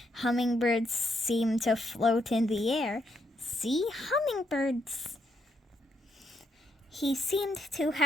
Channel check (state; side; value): normal; both; correlation 0.78